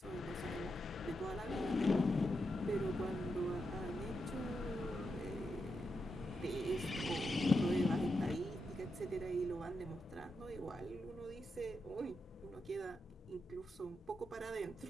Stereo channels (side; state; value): both; normal; correlation 0.86